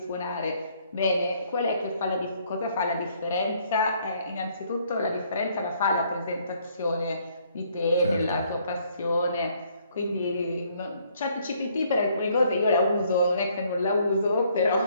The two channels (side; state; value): both; inverted; correlation -0.66